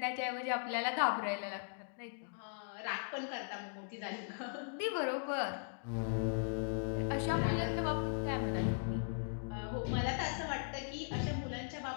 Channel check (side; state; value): right; silent; digital silence